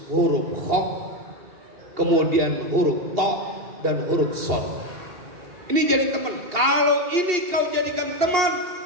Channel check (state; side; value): late; left; 2.8 ms